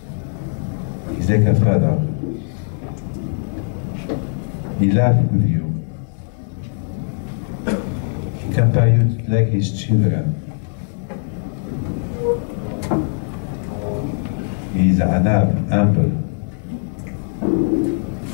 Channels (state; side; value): silent; right; 65 dB below the other